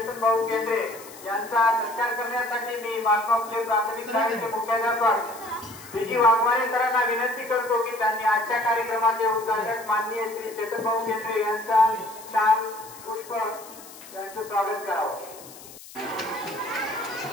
भाऊ केंद्रे यांचा सत्कार करण्यासाठी मी महात्मा फुले प्राथमिक शाळेचे मुख्याध्यापक विजी वाघमारे सरांना विनंती करतो की त्यांनी आजच्या कार्यक्रमाचे उद्घाटक माननीय श्री चेतन भाऊ केंद्रे यांचा शाल पुष्प यांचे स्वागत करावं।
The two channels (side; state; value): left; noise; hiss, 18 dB below the sound